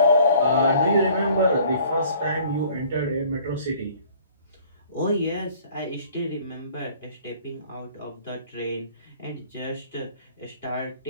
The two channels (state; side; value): inverted; both; correlation -0.54